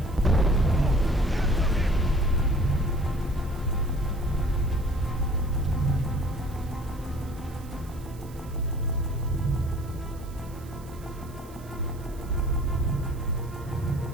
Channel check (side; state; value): right; noise; hiss, 23 dB below the sound